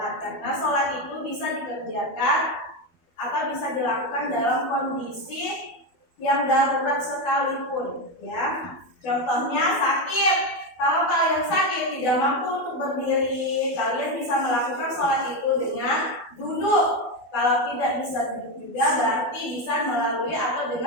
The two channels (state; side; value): late; right; 12 ms